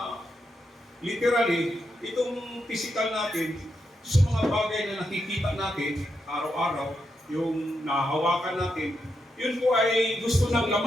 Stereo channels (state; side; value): normal; both; correlation 0.84